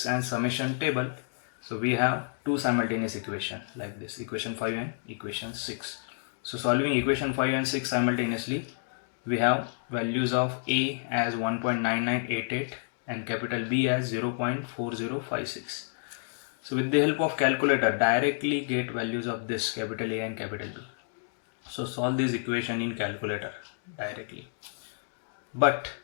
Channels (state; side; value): silent; right; digital silence